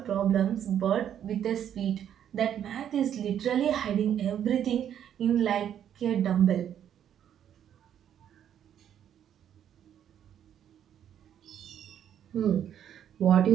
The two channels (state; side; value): quieter; left; 9.7 dB